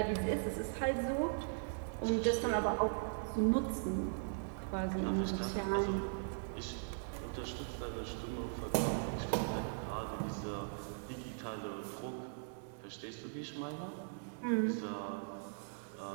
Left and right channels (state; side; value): silent; left; 52 dB below the other